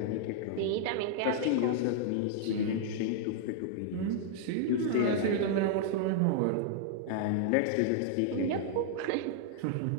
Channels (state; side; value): different; both; correlation -0.01